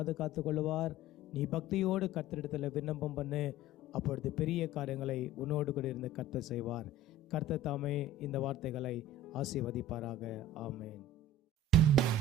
கொள்ளுவார். நீ பக்தியோடு கர்த்தரிடத்தில் விண்ணப்பம் பண்ணு, அப்பொழுது பெரிய காரியங்களை உன்னோடு கூட இருந்து கர்த்தர் செய்வார். கர்த்தர் தாமே இந்த வார்த்தைகளை ஆசீர்வதிப்பாராக. ஆமென்.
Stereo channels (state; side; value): normal; both; correlation 0.39